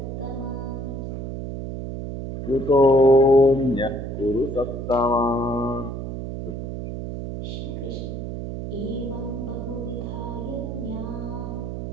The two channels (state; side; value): noise; right; hum, 6 dB below the sound